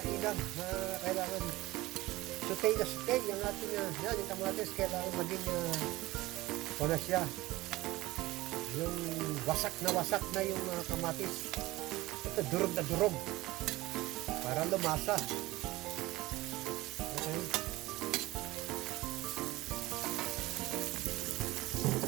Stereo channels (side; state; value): left; quieter; 18.9 dB